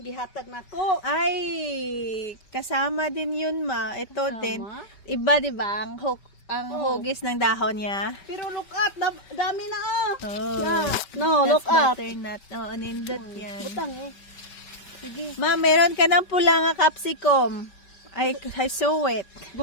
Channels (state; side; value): late; right; 5.2 ms